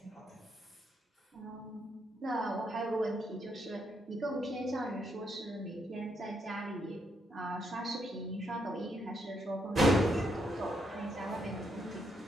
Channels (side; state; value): both; normal; correlation 0.77